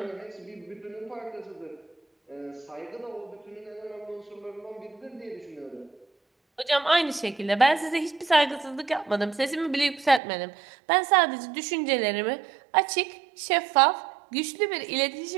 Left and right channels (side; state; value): left; drops out; at 10.2 s